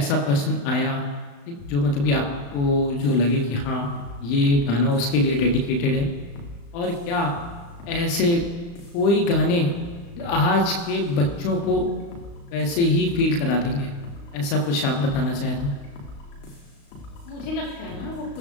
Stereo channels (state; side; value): late; right; 35 ms